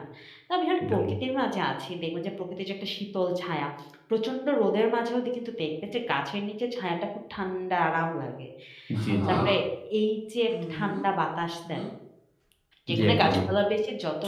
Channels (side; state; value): both; identical; correlation 1.00